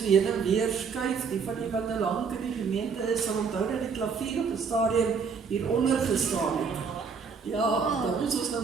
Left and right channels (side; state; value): left; quieter; 5.7 dB